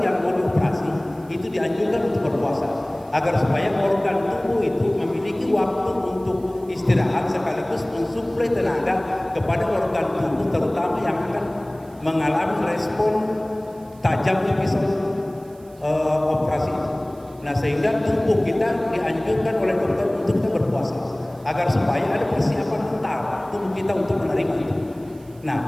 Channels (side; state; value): right; noise; hiss, 28 dB below the sound